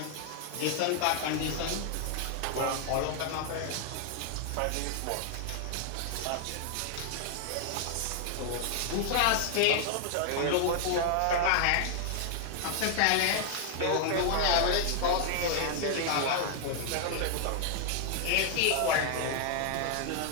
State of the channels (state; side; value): different; both; correlation 0.00